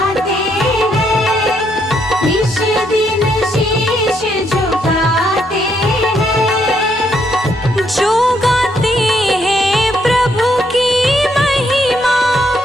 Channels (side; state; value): both; normal; correlation 0.74